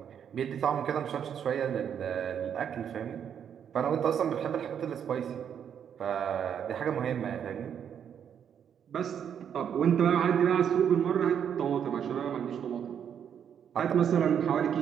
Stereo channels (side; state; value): left; quieter; 8.4 dB